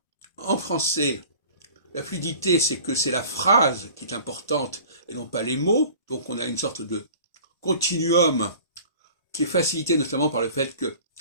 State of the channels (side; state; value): both; inverted; correlation -0.45